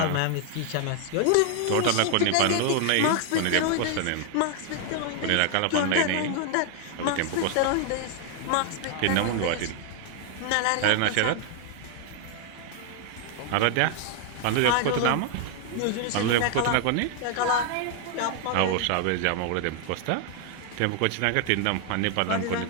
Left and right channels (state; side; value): different; both; correlation 0.00